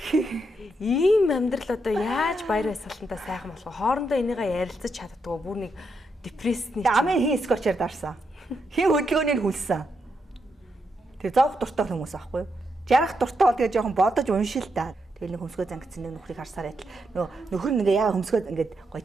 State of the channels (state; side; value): normal; both; correlation 0.82